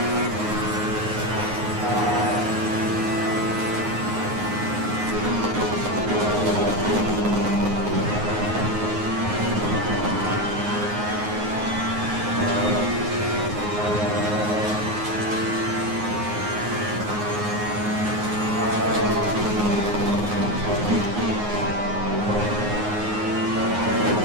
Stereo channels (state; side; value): late; left; 9.5 ms